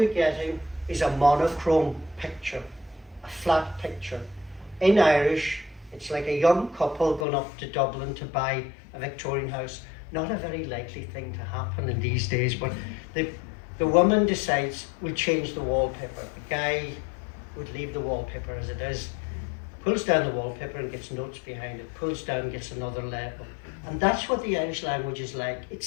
getting is a monochrome picture, a flat picture. In Irish, it's like a young couple going up to Dublin to buy a Victorian house. Not a very likely thing to happen in these days, but the woman decides we'll change the wallpaper. The guy would leave the wallpaper as it is, pulls down the wallpaper and gets notes behind it, pulls down, gets another label, And that's what the Irish language is like. It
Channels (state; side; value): drops out; right; at 7.2 s